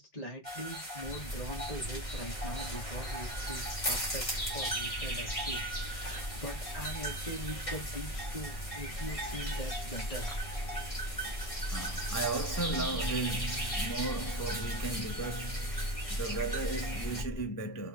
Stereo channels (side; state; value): right; late; 1.6 ms